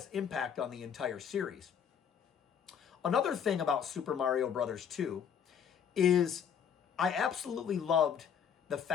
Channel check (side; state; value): right; quieter; 7.9 dB